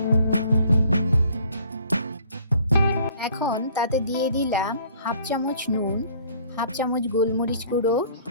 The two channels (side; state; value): both; inverted; correlation -0.56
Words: এখন তাতে দিয়ে দিলাম হাফ চামচ নুন, হাফ চামচ গোলমরিচ গুঁড়ো,